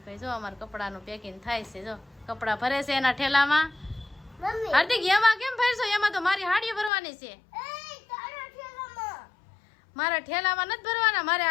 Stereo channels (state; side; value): drops out; right; at 6.9 s